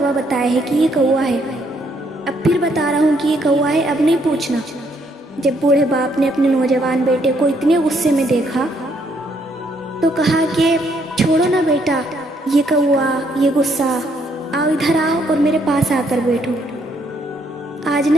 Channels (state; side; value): normal; both; correlation 0.70